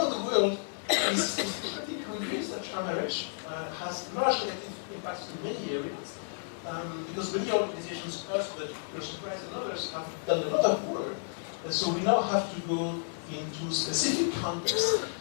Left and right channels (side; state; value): right; silent; digital silence